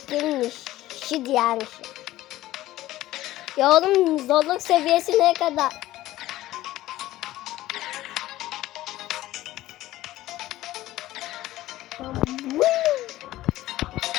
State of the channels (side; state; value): right; quieter; 15.7 dB